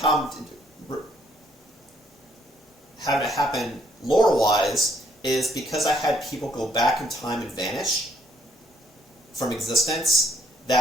I'm having it happen lore-wise is because I had people go back in time and vanish from existence,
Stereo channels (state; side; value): normal; both; correlation 0.68